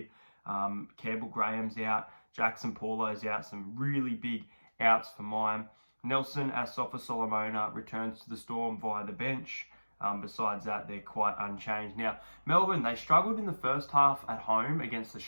Campbell Graham's out, Jackson Paulo's out, some really big outs for mine. Nelson Asafa Solomona returns to the Storm via the bench. Besides that, they're quite unchanged. Now, Melbourne, they struggled in the first half at home against the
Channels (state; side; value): inverted; both; correlation -1.00